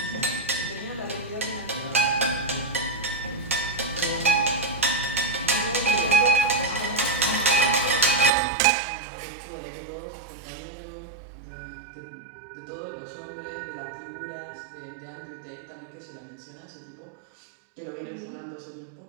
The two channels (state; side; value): drops out; left; at 8.3 s